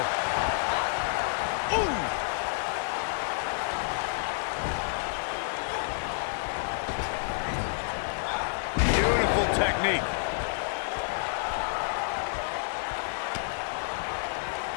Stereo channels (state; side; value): silent; right; 58 dB below the other